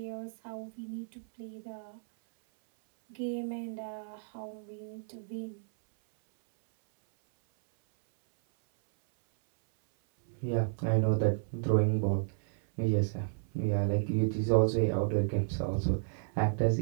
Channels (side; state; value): left; silent; 56 dB below the other